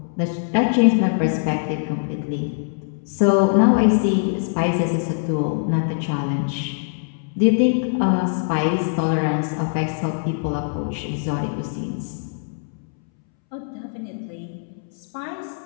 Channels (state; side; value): silent; right; 64 dB below the other